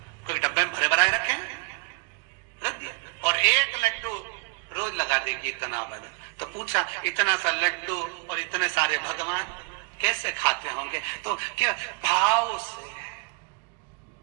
कोई डब्बे में भरे भराए रखे रख दिया, और 1 लड्डू रोज लगा देगी, इतना बना। तो पूछा, इतना सा लड्डू और इतने सारे भगवान कैसे खाते होंगे? तो क्या भाव से।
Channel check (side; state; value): left; quieter; 31.2 dB